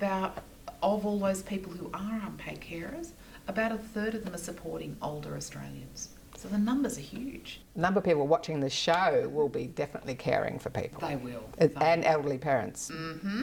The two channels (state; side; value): identical; both; correlation 1.00